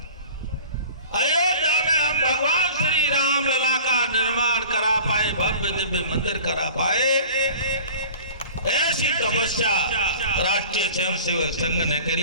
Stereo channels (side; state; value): both; inverted; correlation -0.42